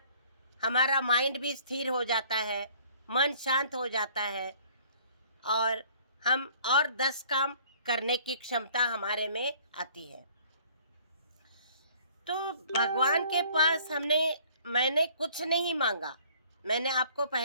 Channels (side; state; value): both; inverted; correlation -0.56